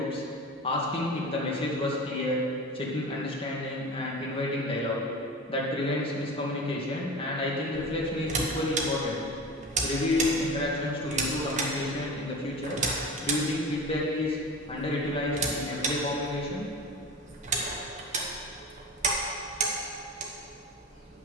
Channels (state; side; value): normal; both; correlation 0.32